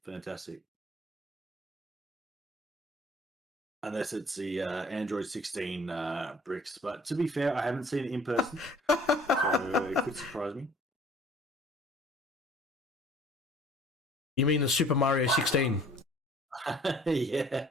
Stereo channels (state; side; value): normal; both; correlation 0.54